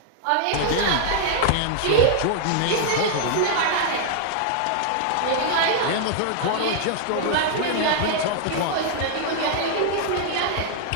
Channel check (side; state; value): both; different; correlation -0.01